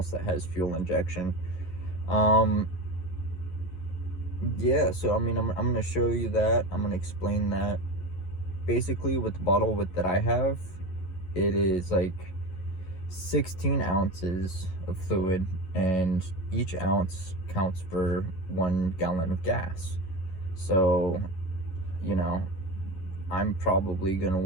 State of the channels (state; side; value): late; right; 11 ms